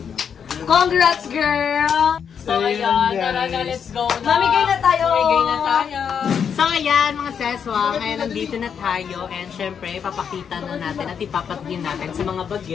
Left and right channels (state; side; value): quieter; right; 7.3 dB